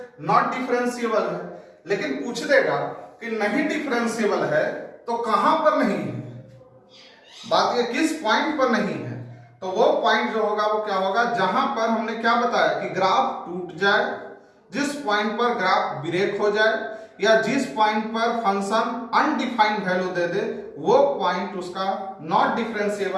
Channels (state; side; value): identical; both; correlation 1.00